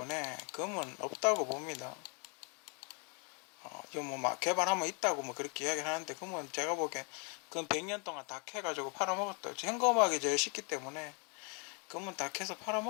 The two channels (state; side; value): quieter; right; 35.8 dB